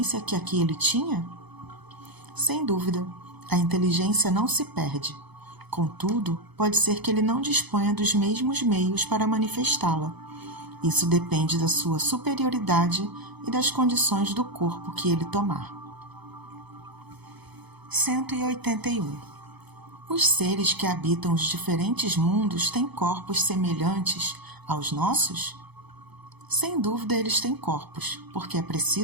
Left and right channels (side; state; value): left; late; 1.0 ms